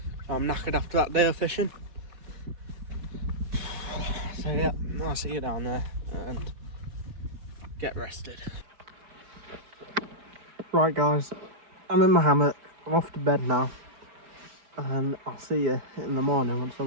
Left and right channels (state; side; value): late; left; 4.7 ms